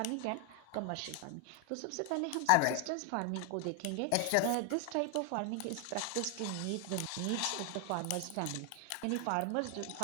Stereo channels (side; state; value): both; different; correlation 0.00